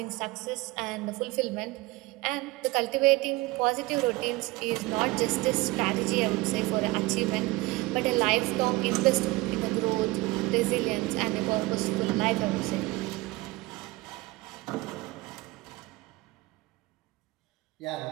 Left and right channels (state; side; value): quieter; left; 21.5 dB